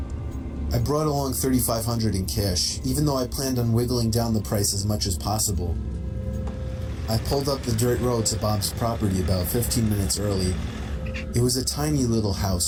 I brought along $3,500 in cash, even though I planned on wiggling down the price as much as possible. I pulled up the dirt road to Bob's property about 15 minutes early. It was a tiny little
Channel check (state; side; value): identical; both; correlation 1.00